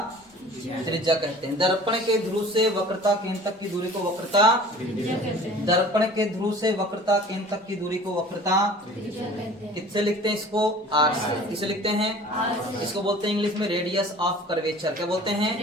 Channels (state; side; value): normal; both; correlation 0.45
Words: त्रिज्या कहते हैं। दर्पण के ध्रुव से वक्रता केंद्र तक की दूरी को वक्रता त्रिज्या कहते हैं। दर्पण के ध्रुव से वक्रता केंद्र तक की दूरी को वक्रता त्रिज्या कहते हैं। किससे लिखते हैं इसको, आर से। किससे लिखते हैं, आर से। इसको बोलते हैं इंग्लिश में रेडियस ऑफ कर्वेचर। क्या बोलते हैं,